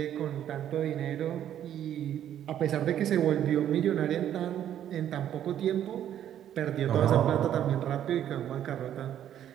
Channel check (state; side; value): quieter; left; 10.7 dB